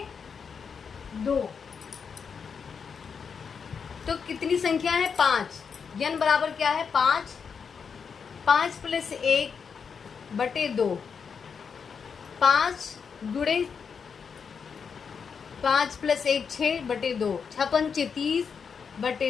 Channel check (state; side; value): quieter; right; 6.2 dB